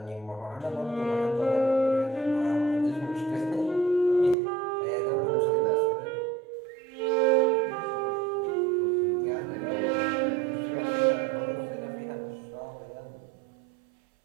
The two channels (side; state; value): left; drops out; at 4.4 s